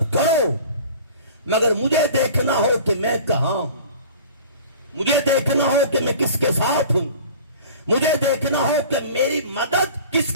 کرو، مگر مجھے دیکھنا ہو کہ میں کہاں ہوں، مجھے دیکھنا ہو کہ میں کس کے ساتھ ہوں، مجھے دیکھنا ہو کہ میری مدد کس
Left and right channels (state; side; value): inverted; both; correlation -0.43